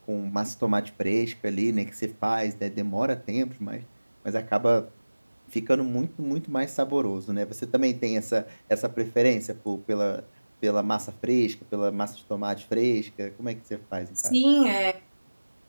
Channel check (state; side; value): inverted; both; correlation -1.00